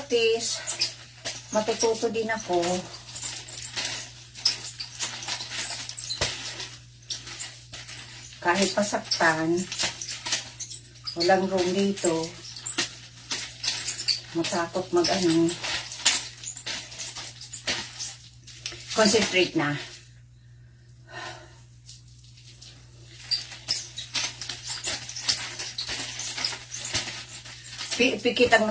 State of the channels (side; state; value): both; identical; correlation 1.00